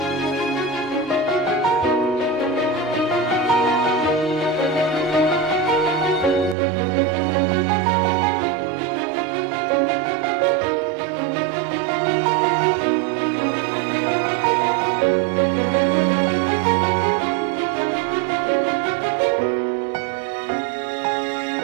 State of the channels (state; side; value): drops out; left; at 6.6 s